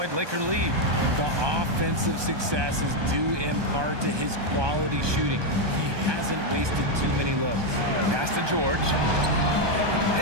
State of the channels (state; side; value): late; left; 1.2 ms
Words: Laker lead. The offensive success is due in part to his quality shooting. He hasn't wasted too many looks. Pass to George.